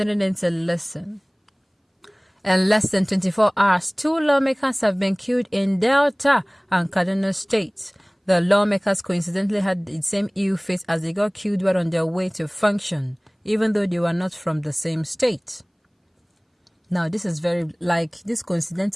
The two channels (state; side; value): identical; both; correlation 1.00